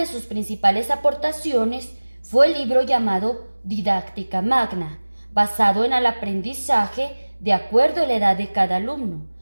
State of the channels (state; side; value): inverted; both; correlation -1.00